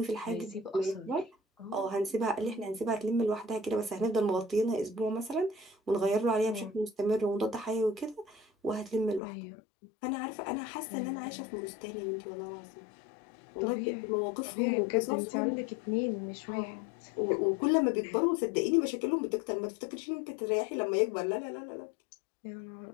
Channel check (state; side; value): drops out; right; at 9.2 s